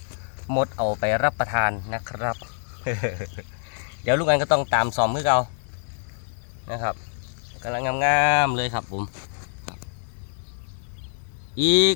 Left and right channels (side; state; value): right; silent; 61 dB below the other